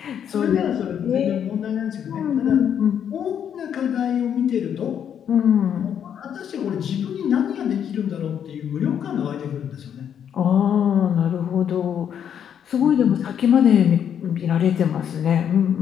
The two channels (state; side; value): quieter; right; 8.7 dB